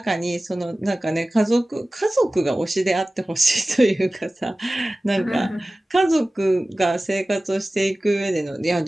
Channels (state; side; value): normal; both; correlation 0.97